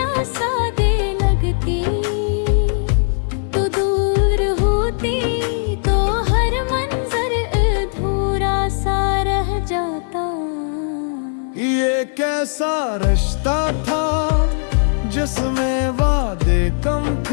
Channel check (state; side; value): silent; right; 67 dB below the other